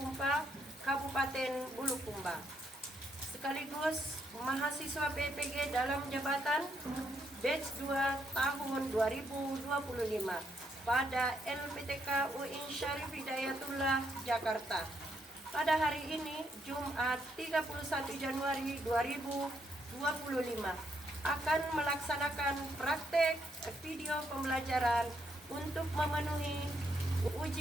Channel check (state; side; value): normal; both; correlation 0.76